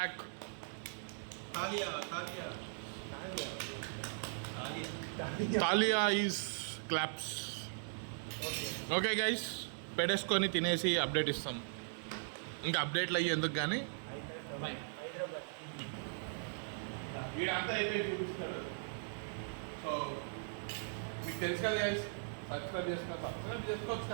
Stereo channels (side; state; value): left; silent; digital silence